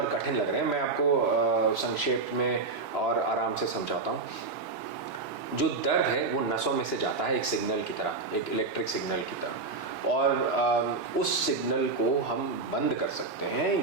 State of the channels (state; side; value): quieter; left; 4.0 dB